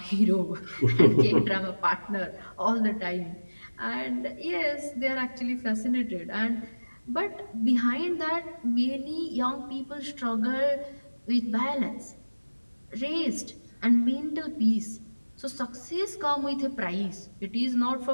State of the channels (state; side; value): inverted; both; correlation -1.00